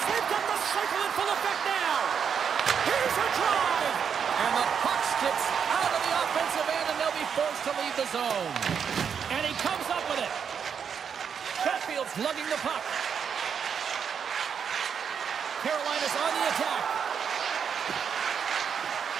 They've got the cycle in full effect now. Here's a drive. And the puck skips out of the offensive end, and they'll be forced to leave the zone. And he comes up with it. Chatfield's lugging the puck. Carolina's on the attack.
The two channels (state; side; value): quieter; left; 7.2 dB